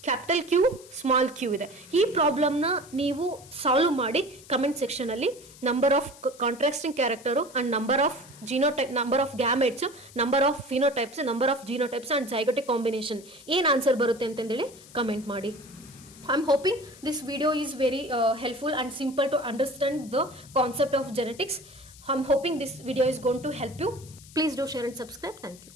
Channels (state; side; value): noise; left; hiss, 21 dB below the sound